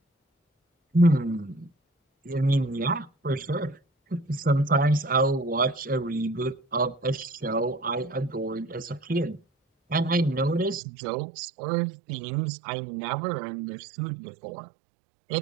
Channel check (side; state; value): left; drops out; at 10.8 s